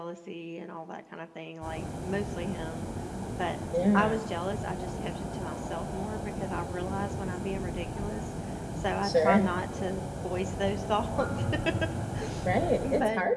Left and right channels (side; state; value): both; identical; correlation 1.00